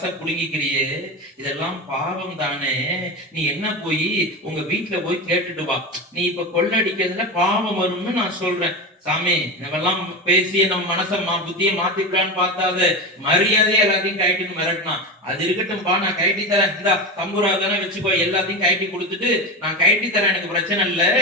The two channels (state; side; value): normal; both; correlation 0.22